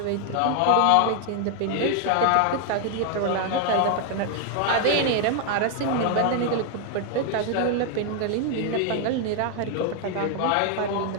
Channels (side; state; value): both; different; correlation 0.00